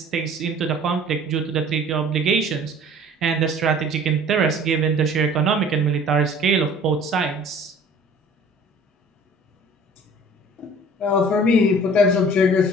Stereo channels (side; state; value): both; normal; correlation 0.49